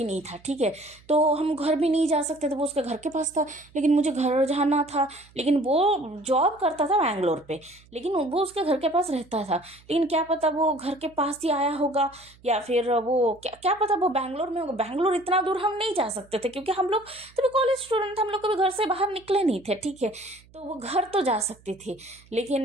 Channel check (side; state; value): right; noise; hum, 27 dB below the sound